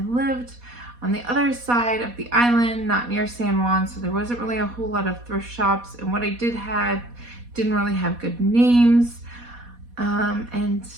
lived on the other side of the island, not near San Juan, so there wasn't really a whole lot of thrift shops. And what I did have didn't really have good names. And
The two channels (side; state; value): left; late; 4.1 ms